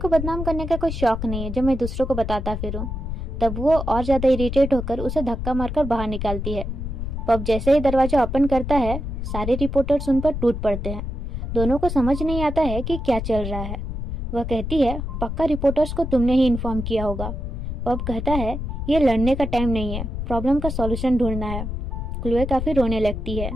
को बदनाम करने का कोई शौक नहीं है जो मैं दूसरों को बताता फिरूं। तब वो और ज्यादा इरिटेट होकर उसे धक्का मारकर बाहर निकालती है। पब जैसे ही दरवाजा ओपन करता है, सारे रिपोर्टर्स उन पर टूट पड़ते हैं। दोनों को समझ नहीं आता है कि क्या चल रहा है। वह कहती है, पक्का रिपोर्टर्स को तुमने ही इन्फॉर्म किया होगा। पब कहता है, ये लड़ने का टाइम नहीं है, प्रॉब्लम का सॉल्यूशन ढूंढना है। क्लोए काफी रोने लगती है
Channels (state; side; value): noise; left; rumble, 5 dB below the sound